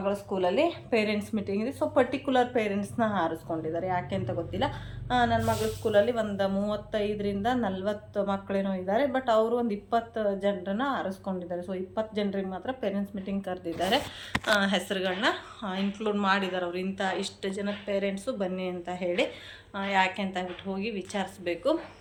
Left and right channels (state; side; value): identical; both; correlation 1.00